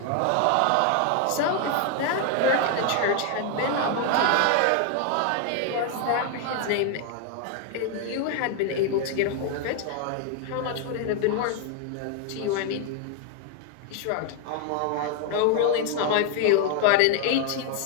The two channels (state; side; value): different; both; correlation 0.00